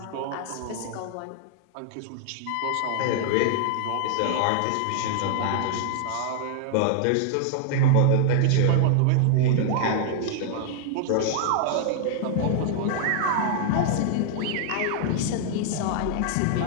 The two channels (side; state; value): both; different; correlation 0.00